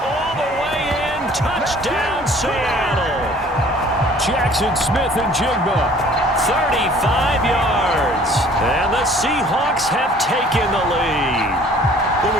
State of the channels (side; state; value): both; normal; correlation 0.53